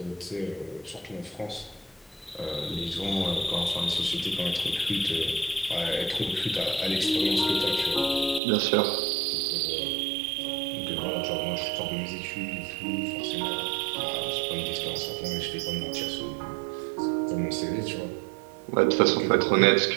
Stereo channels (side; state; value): left; drops out; at 8.4 s